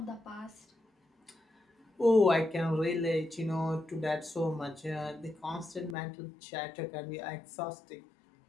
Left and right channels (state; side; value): drops out; right; at 6.0 s